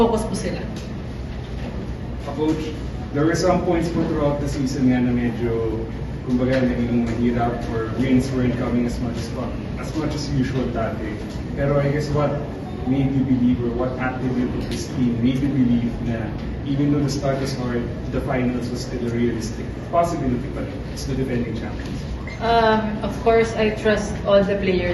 po sila. Coach, there were some points po throughout the season nga na medyo kumbaga naging mahirap or wins weren't coming as much as usual dati. Pero I guess what made you believe or what attribute of this team made you believe na even though the start was hard, the finals was still a realistic possibility, but it's the defending champions? Of course, I trust all the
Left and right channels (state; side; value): identical; both; correlation 1.00